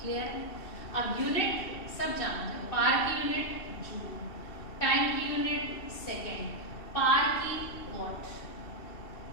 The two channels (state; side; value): late; right; 2.7 ms